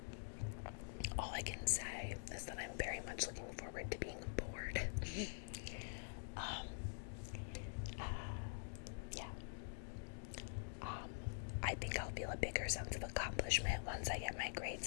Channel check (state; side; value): silent; right; digital silence